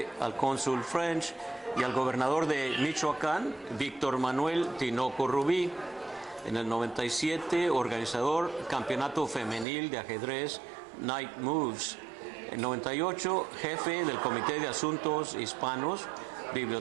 al cónsul French y al gobernador de Michoacán, Víctor Manuel Tinoco Rubí. En el 97, organizador Campeonato Femenil de Ajedrez Night Moves. En 98, jefe del Comité de Asuntos Hispanos,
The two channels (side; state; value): left; drops out; at 9.7 s